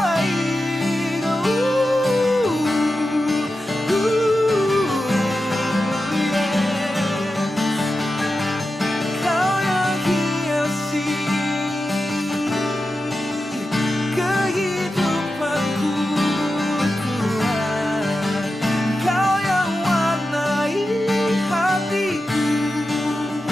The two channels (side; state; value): both; normal; correlation 0.91